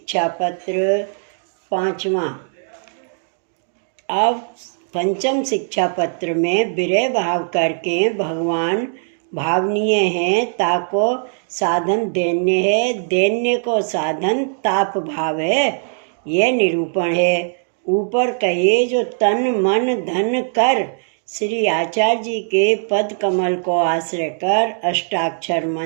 पत्र 5वां। अब पंचम शिक्षा पत्र में विरह भाव करके भगवान भावनीय हैं, ताको साधन दैन्य है, दैन्य को साधन ताप भाव है, यह निरूपण है। ऊपर कहे जो तन मन धन कर श्री आचार्य जी के पद कमल को आश्रय कर अष्टाक्षर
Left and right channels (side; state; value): left; silent; digital silence